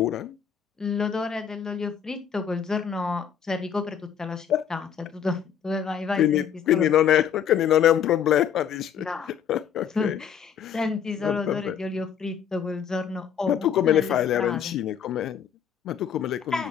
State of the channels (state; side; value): quieter; right; 8.2 dB